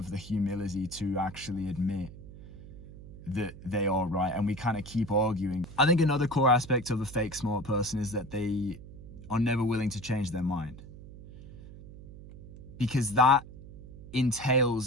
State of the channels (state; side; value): noise; right; hum, 16 dB below the sound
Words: the humility to actually admit that they are right, and we kind of keep arguing. I think another core aspect of a fake smart person is that they are never willing to change their mind, because that